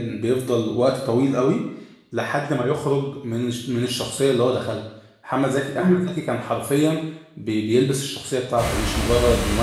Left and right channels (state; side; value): identical; both; correlation 1.00